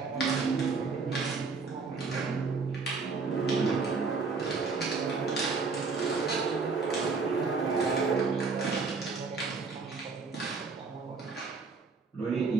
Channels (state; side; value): quieter; left; 4.5 dB